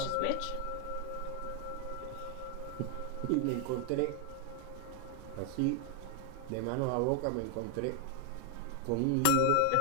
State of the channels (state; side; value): different; both; correlation 0.00